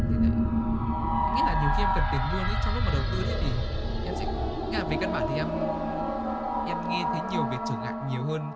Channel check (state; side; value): identical; both; correlation 1.00